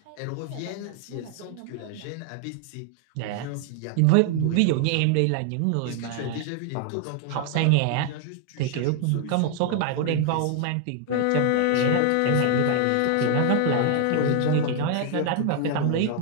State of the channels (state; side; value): different; both; correlation 0.00